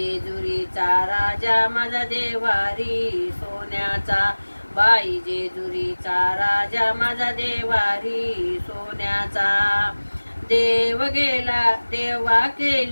राजा माझा देवारी सोन्याचा. बाई जेजुरीचा राजा माझा देवारी सोन्याचा. देव गेला देवा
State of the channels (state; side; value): inverted; both; correlation -1.00